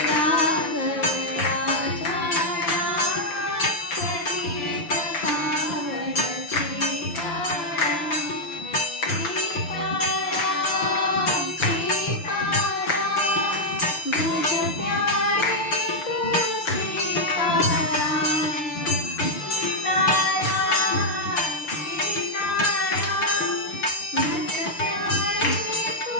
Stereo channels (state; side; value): late; right; 6.8 ms